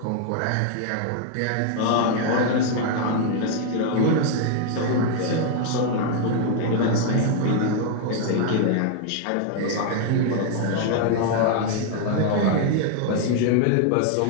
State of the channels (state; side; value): different; both; correlation 0.00